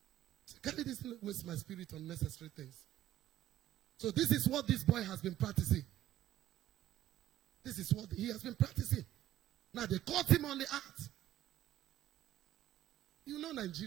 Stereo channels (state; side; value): quieter; left; 13.1 dB